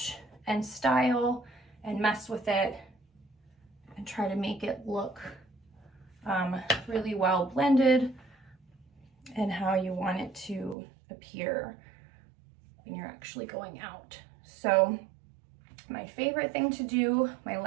and style and mess with it and try to make it look really well blended and how you want it to appear when you're actually going out. So my favorite thing to do, my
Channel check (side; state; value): left; drops out; at 10.8 s